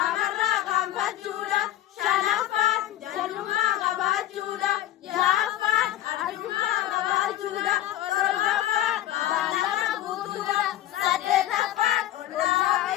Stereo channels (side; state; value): right; quieter; 13.4 dB